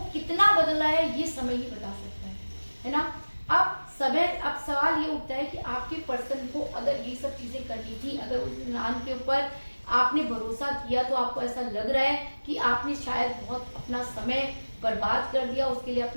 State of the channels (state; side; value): inverted; both; correlation -1.00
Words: कितना बदला है ये समय ही बता सकता है ना। अब सवाल ये उठता है कि आपके पर्सन को अगर ये सब चीजें करनी थी, अगर उस इंसान के ऊपर आपने भरोसा किया, तो आपको ऐसा लग रहा है कि आपने शायद बहुत अपना समय बर्बाद कर दिया, उसके लिए